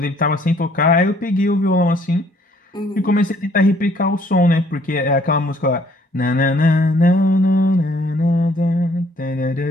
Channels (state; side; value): normal; both; correlation 0.62